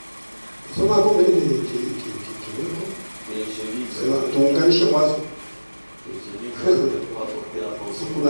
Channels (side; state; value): both; inverted; correlation -1.00